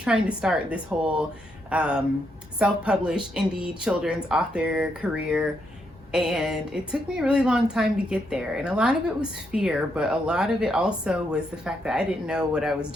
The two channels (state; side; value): normal; both; correlation 0.79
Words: to start this whole self-published indie children's author career. And it took me a really long time to get there. And a lot of it was fear, but a lot of it also was the fact that I didn't know what I was